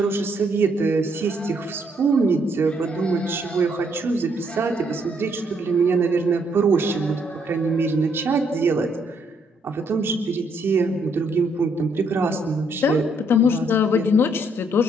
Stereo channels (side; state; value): both; normal; correlation 0.71